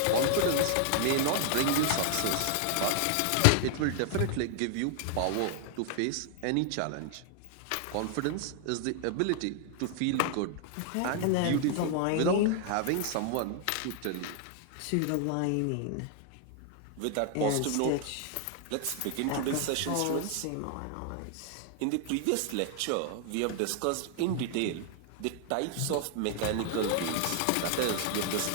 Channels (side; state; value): both; different; correlation 0.00